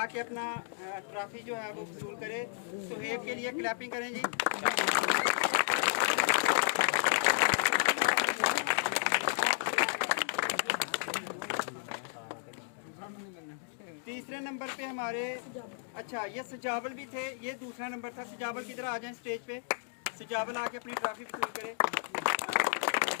अपना ट्रॉफी जो है वो वसूल करे। सुहेब के लिए क्लैपिंग करें जी। तीसरे नंबर पे हमारे अच्छा ये सजावल भी थे, ये दूसरा नंबर था। सजावल किधर आ जाए स्टेज पे, सजावल आके अपनी ट्रॉफी वसूल करे।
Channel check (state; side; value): silent; right; digital silence